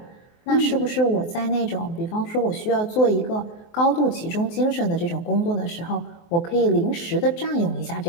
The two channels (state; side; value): late; right; 23 ms